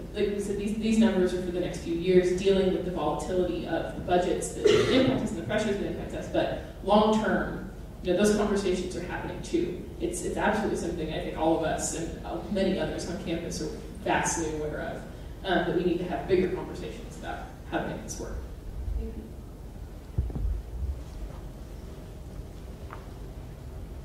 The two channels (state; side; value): identical; both; correlation 1.00